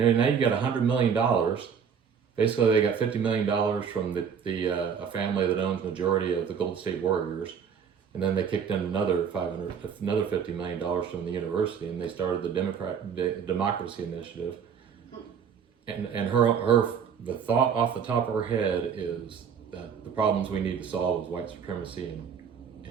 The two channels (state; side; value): quieter; left; 7.1 dB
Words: you got $100 million. Basically, they got $50 million from a family that owns majority of the Golden State Warriors, and then they kicked in another $50 million from the university, and they started the Democracy Initiative. And the thought off the top of her head is that the problems we need to solve is white supremacy